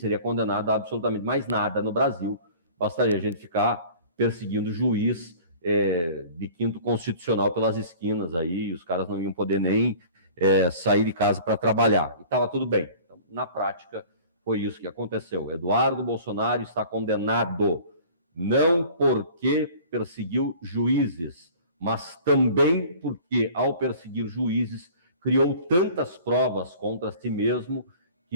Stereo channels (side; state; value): both; inverted; correlation -0.45